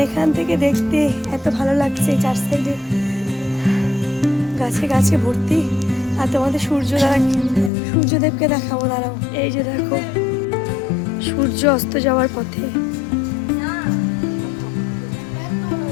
এখান থেকে দেখতে এত ভালো লাগছে, চার সাইডে গাছে গাছে ভর্তি। আর তোমাদের সূর্যদেবকে দেখাবো, দাঁড়াও। এই যে দেখো সূর্য অস্ত যাওয়ার পথে।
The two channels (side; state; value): right; drops out; at 7.7 s